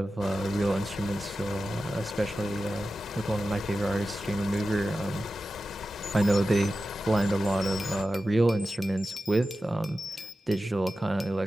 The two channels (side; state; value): both; normal; correlation 0.93